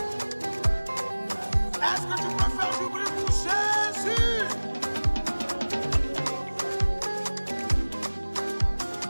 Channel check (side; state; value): both; inverted; correlation -1.00